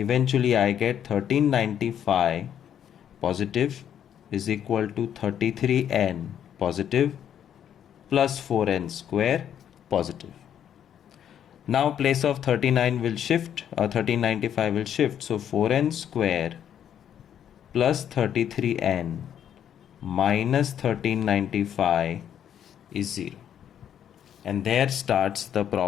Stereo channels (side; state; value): right; quieter; 9.5 dB